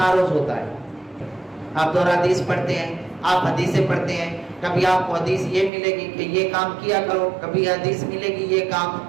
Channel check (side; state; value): left; drops out; at 5.7 s